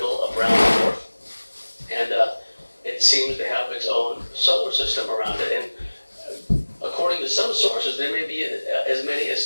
of brown dwarf, and it seems to have its own solar system around it. And according to some sources, there may be as many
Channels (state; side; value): inverted; both; correlation -1.00